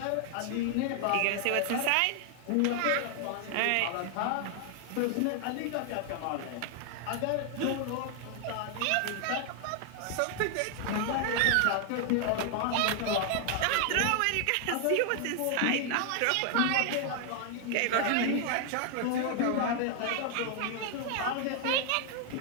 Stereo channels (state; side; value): different; both; correlation 0.00